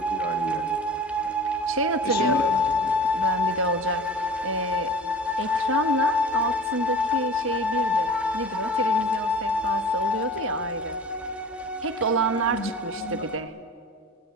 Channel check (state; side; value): normal; both; correlation 0.40